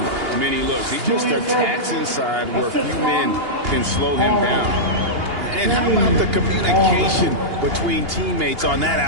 many looks. He just attacks inside where few men can slow him down. And how about the communication between teammates on that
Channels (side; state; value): left; late; 2.8 ms